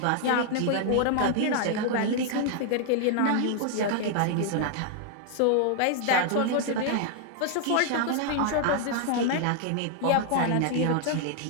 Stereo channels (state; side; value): different; both; correlation 0.00